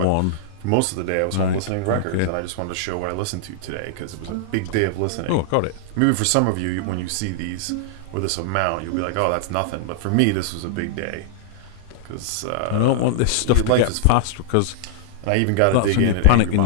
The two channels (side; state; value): both; different; correlation -0.01